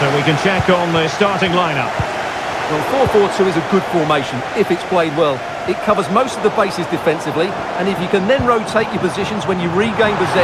we can check on the starting lineup. Well, 4-4-2 is a good formation if it's played well. It covers most of the bases defensively, and if you can then rotate your positions when you regain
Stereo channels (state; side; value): identical; both; correlation 1.00